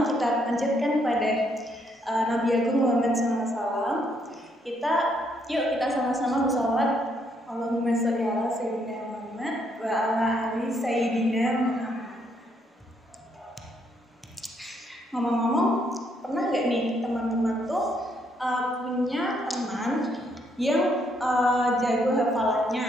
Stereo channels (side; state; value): both; normal; correlation 0.72